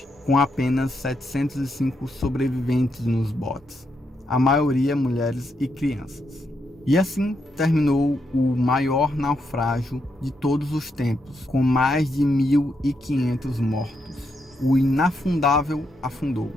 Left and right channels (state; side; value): normal; both; correlation 0.81